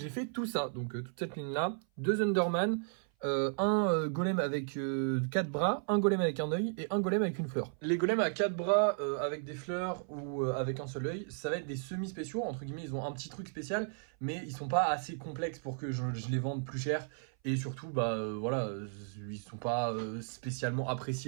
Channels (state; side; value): silent; left; 55 dB below the other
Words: fait tout ça, donc toute cette ligne là, 2 Underman, un golem avec 4 bras, un golem avec un œil et un golem avec une fleur. Les golems à 4 bras avec des fleurs ou avec un seul œil, ça va être des semi-spéciaux, entre guillemets, ils ont un petit truc spécial, mais ils sont pas assez complexes pour que je les vende plus cher. Et surtout, voilà, ils sont pas spécialement